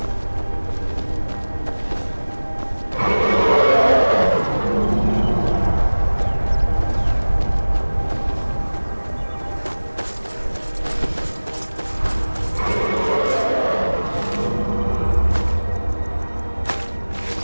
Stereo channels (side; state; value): both; inverted; correlation -1.00